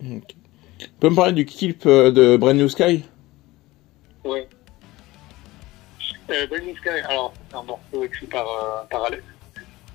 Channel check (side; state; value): right; quieter; 19.2 dB